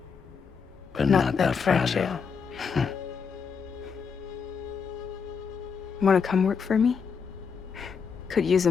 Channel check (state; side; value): quieter; right; 6.0 dB